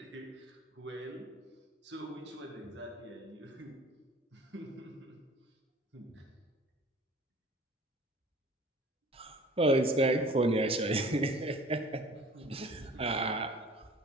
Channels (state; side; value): normal; both; correlation 0.47